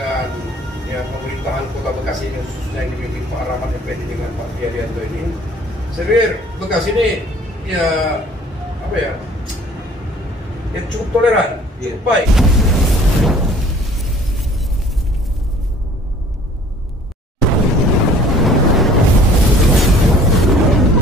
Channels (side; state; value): both; normal; correlation 0.52